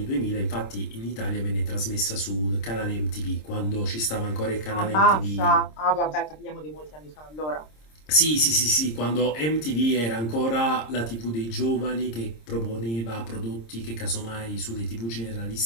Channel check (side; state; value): right; late; 26 ms